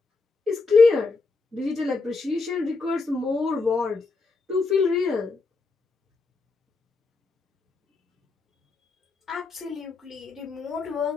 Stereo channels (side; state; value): right; quieter; 3.9 dB